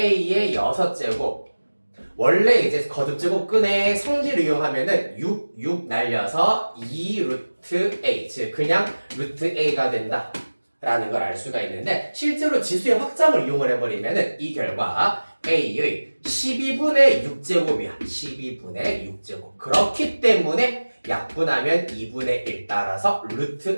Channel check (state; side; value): inverted; both; correlation -1.00